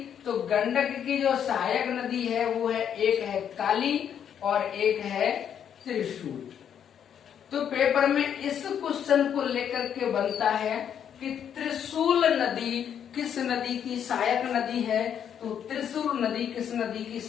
तो गंडक की जो सहायक नदी है वो है, एक है काली और एक है त्रिशूल। तो पेपर में इस क्वेश्चन को लेकर के बनता है कि त्रिशूल नदी किस नदी की सहायक नदी है? तो त्रिशूल नदी किस नदी की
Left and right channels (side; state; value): right; quieter; 8.7 dB